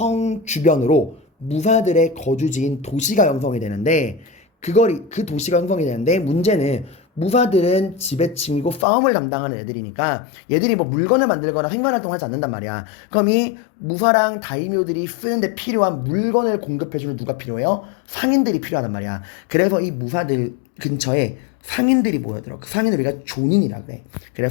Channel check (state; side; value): drops out; right; at 8.8 s